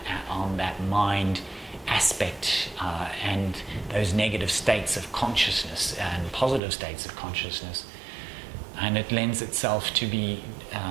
mind aspect and those negative states of consciousness and positive states of consciousness, and it lends itself to be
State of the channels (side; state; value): left; drops out; at 6.6 s